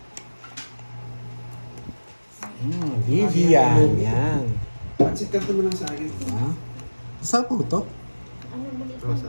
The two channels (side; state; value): both; inverted; correlation -1.00